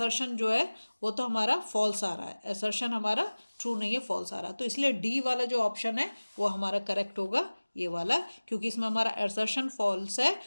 जो है वो तो हमारा फॉल्स आ रहा है, असर्शन हमारा ट्रू नहीं है, फॉल्स आ रहा है, तो इसलिए डी वाला जो ऑप्शन है वो हमारा करेक्ट होगा, ये वाला, क्योंकि इसमें हमारा असर्शन फॉल्स है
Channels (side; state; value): both; inverted; correlation -1.00